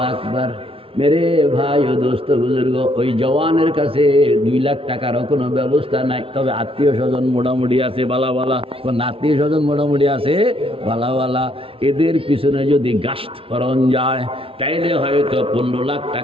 আকবার। মেরে ভাই ও দোস্ত বুজুর্গ, ওই জওয়ানের কাছে 2 লাখ টাকারও কোনো ব্যবস্থা নাই। তবে আত্মীয় স্বজন মোটামুটি আছে বালা বালা, আত্মীয় স্বজন মোটামুটি আছে বালা বালা। এদের পিছনে যদি গাস্ত করণ যায় তাইলে হয়তো 15 লাখ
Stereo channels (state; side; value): late; left; 0.26 ms